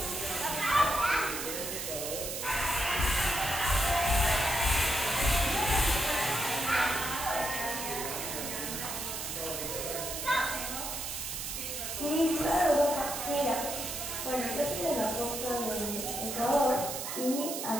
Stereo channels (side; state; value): right; noise; hiss, 5 dB below the sound